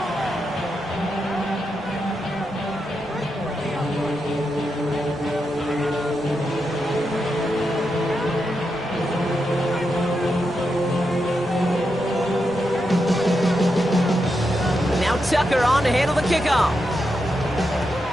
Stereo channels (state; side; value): normal; both; correlation 0.86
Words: Tucker on to handle the kickoff.